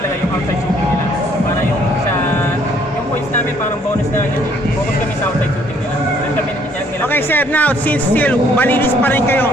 yung outside shooting nila. Para yung sa, yung points namin parang bonus na yun. Focus kami sa outside shooting nila. Then kami nila. Okay sir, now since still malinis pa rin kayo,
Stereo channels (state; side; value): normal; both; correlation 0.64